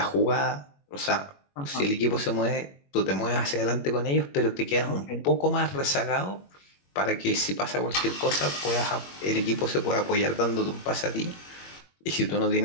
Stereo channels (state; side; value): late; right; 21 ms